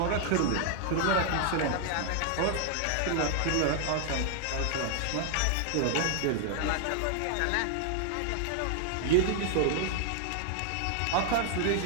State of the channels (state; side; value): different; both; correlation 0.00